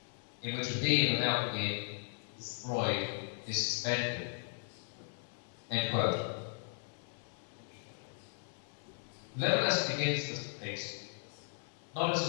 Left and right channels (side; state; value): right; silent; digital silence